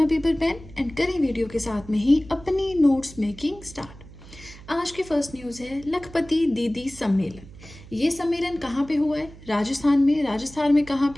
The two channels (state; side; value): noise; right; hum, 19 dB below the sound